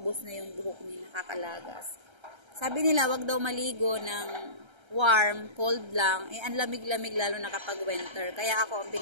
na yung buhok niya, nakakalagas. Sabi nila, wag daw maligo ng warm, cold lang, ang lamig-lamig lalo na kapag winter. Kaya ako, ang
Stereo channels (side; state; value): left; late; 1.3 ms